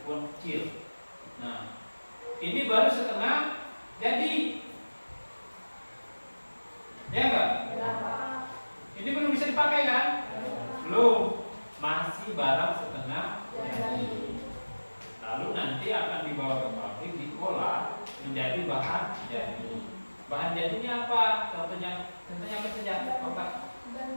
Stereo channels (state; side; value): inverted; both; correlation -1.00